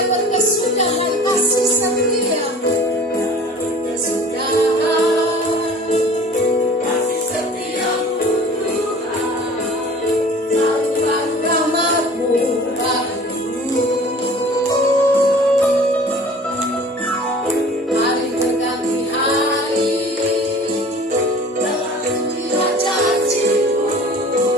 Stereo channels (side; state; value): both; normal; correlation 0.45